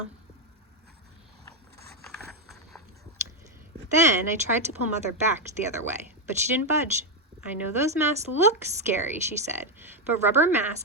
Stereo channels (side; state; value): both; normal; correlation 0.03